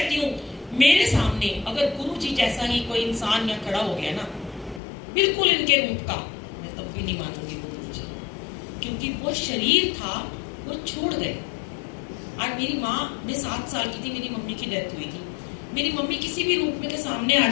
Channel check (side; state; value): right; drops out; at 4.8 s